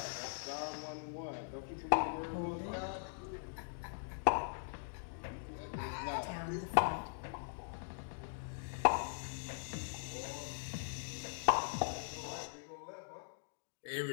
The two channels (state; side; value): silent; right; digital silence